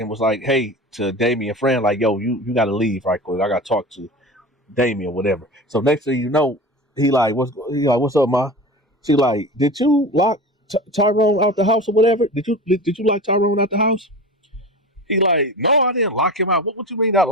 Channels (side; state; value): both; normal; correlation 0.31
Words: was like, hey, to Damien and Fran, like, yo, you got to leave right quick. I got to talk to Damien, whatever. So next thing you know, what's up, ma? She like, did you lock Tyrone out the house or whatever? Did you lock Tyrone out the house? He like, no, I didn't lock him out. What you mean not